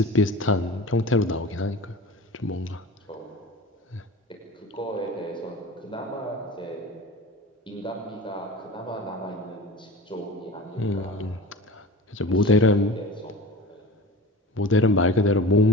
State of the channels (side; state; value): both; normal; correlation 0.35